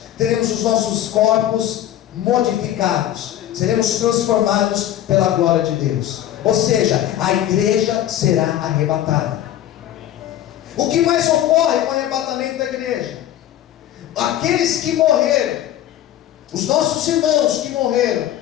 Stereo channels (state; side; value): quieter; right; 12.1 dB